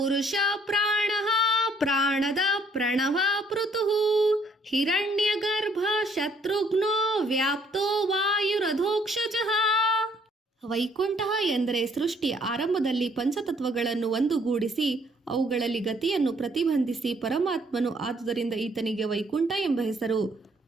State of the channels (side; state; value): both; normal; correlation 0.65